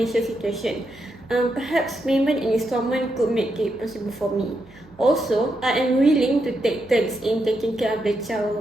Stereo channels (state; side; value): noise; right; hum, 26 dB below the sound